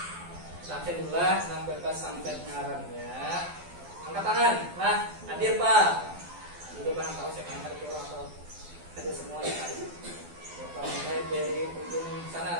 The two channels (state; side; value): late; left; 12 ms